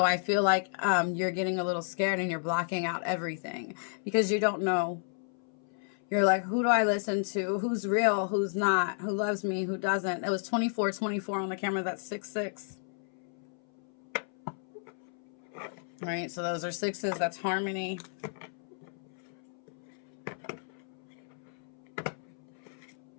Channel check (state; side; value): silent; right; 56 dB below the other